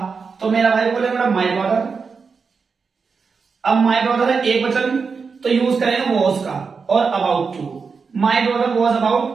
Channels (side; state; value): left; quieter; 5.2 dB